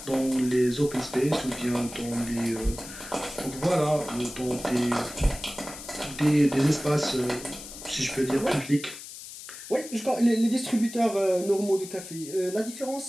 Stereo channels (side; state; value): left; noise; hiss, 13 dB below the sound